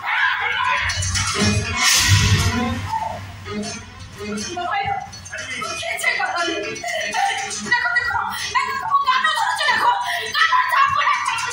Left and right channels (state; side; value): identical; both; correlation 1.00